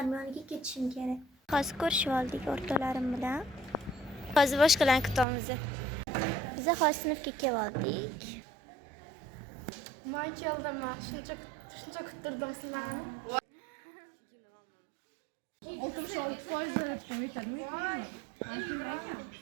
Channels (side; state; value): left; drops out; at 5.2 s